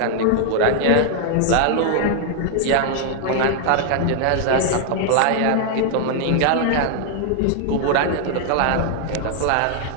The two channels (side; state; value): both; different; correlation 0.00